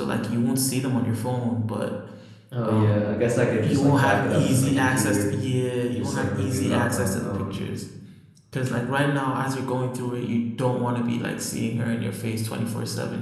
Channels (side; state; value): both; identical; correlation 1.00